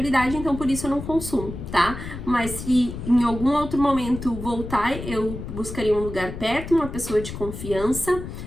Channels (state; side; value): noise; left; rumble, 9 dB below the sound